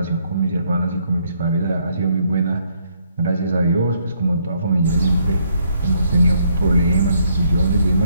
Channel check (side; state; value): both; inverted; correlation -0.71